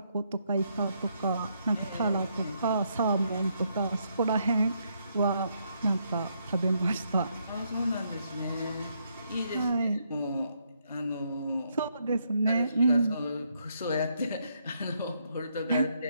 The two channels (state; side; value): inverted; both; correlation -0.75